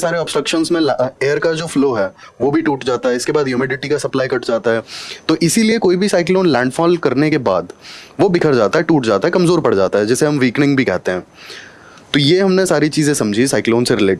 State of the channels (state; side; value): identical; both; correlation 1.00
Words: ऑब्स्ट्रक्शंस में एयर का जो फ्लो है वो भी टूट जाता है, इसके बाद ह्यूमिडिटी का सप्लाई कट जाता है। तो इसीलिए कोई भी साइक्लोन लैंडफॉल करने के बाद वो बिखर जाता है, टूट जाता है, कमज़ोर पड़ जाता है, जिसे हम वीकनिंग भी कहते हैं। तो ये हमने सारी चीज़ें समझी साइक्लोन से